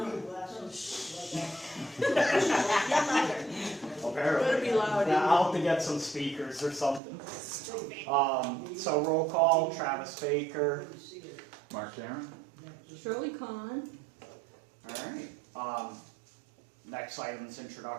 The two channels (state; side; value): drops out; left; at 7.0 s